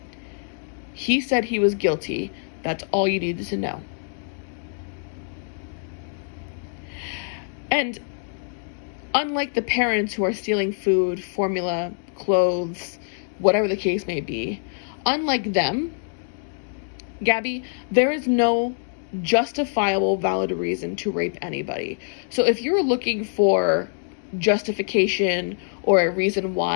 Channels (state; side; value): silent; right; digital silence